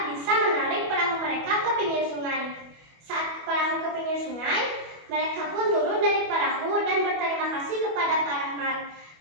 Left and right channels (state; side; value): late; left; 25 ms